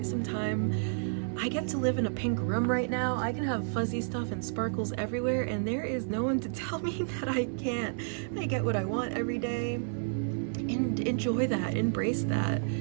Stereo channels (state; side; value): silent; left; 57 dB below the other